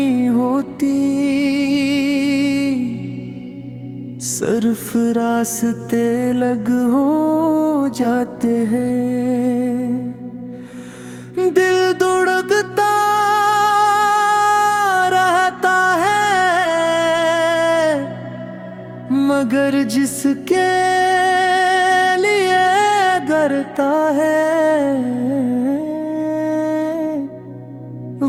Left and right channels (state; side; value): identical; both; correlation 1.00